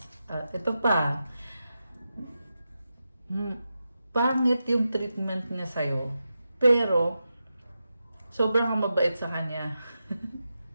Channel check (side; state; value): both; inverted; correlation -0.90